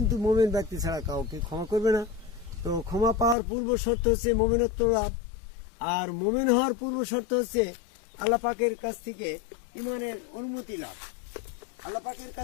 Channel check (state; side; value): drops out; right; at 3.4 s